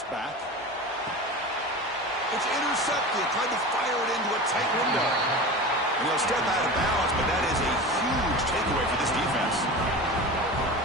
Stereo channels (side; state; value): both; normal; correlation 0.31